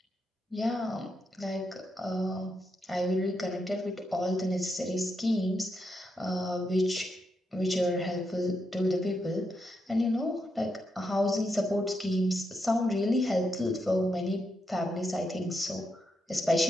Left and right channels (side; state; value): both; normal; correlation 0.83